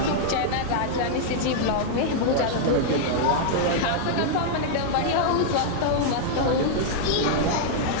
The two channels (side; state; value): both; different; correlation -0.01